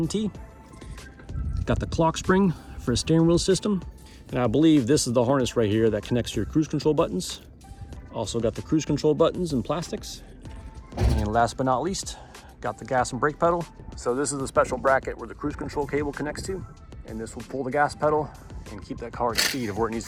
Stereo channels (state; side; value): identical; both; correlation 1.00